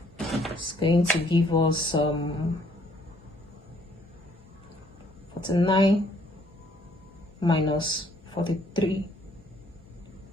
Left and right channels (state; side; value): normal; both; correlation 0.64